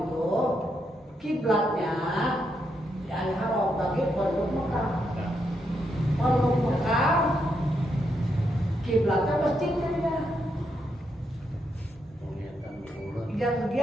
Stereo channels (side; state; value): both; normal; correlation 0.80